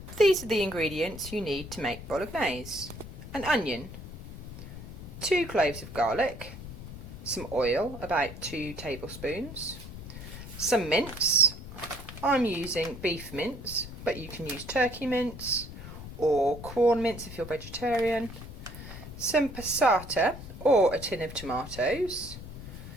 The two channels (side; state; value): left; noise; rumble, 12 dB below the sound